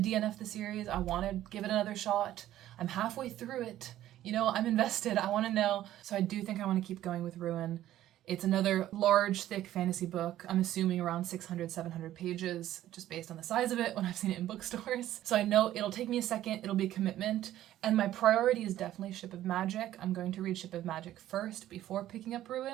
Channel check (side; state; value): left; quieter; 13.2 dB